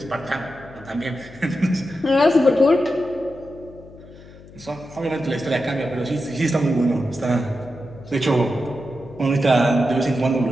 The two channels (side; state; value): left; noise; hum, 20 dB below the sound